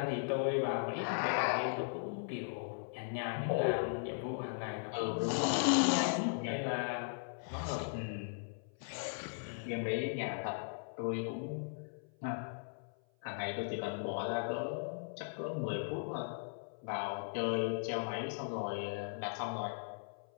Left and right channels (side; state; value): right; silent; 52 dB below the other